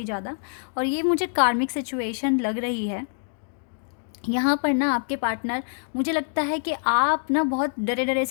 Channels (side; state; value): right; silent; digital silence